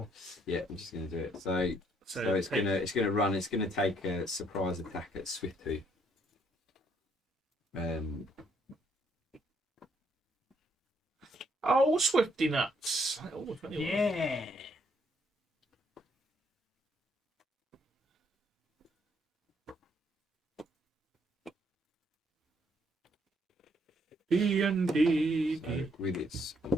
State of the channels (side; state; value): both; normal; correlation 0.69